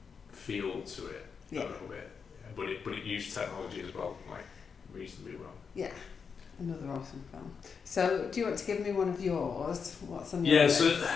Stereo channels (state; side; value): quieter; right; 6.0 dB